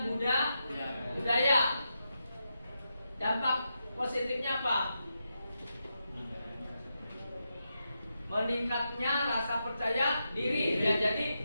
budaya. Dampak positifnya apa? Meningkatnya rasa percaya diri, ya. Jadi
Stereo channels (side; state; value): both; inverted; correlation -0.86